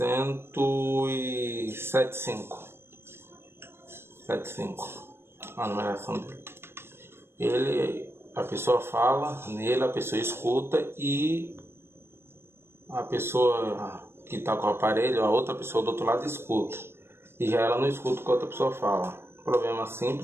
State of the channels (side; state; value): left; late; 0.12 ms